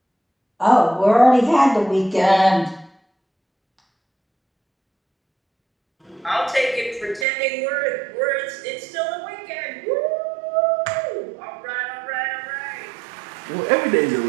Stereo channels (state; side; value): drops out; left; at 7.2 s